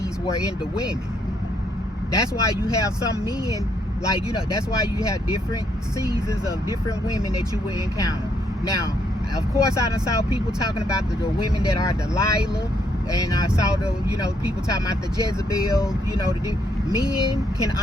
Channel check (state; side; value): normal; both; correlation 0.73